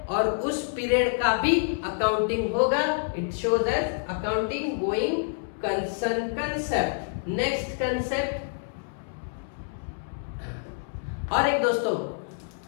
और उस पीरियड का भी अकाउंटिंग होगा। It shows as accounting going concern concept. Next concept और एक दोस्तों,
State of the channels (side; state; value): right; silent; 60 dB below the other